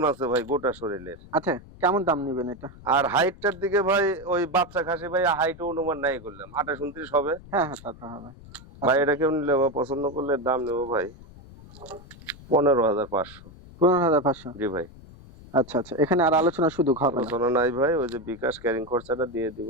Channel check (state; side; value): noise; left; rumble, 19 dB below the sound